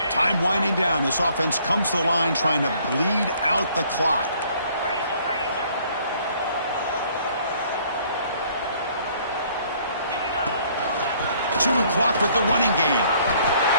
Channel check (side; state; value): both; inverted; correlation -0.61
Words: Time winding down. This offense comes to the line trying to bleed out the clock. Chewing clock with the running game.